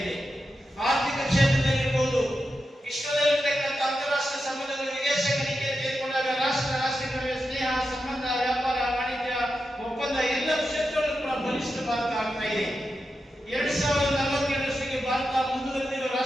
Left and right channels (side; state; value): both; normal; correlation 0.89